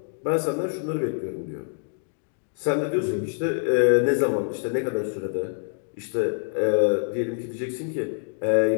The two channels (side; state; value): right; silent; 61 dB below the other